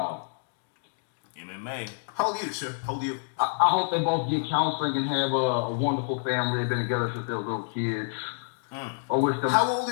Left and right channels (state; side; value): silent; right; digital silence